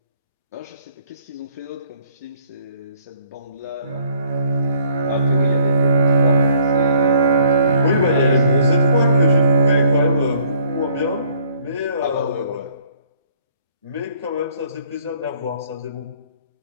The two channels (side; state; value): both; inverted; correlation -0.62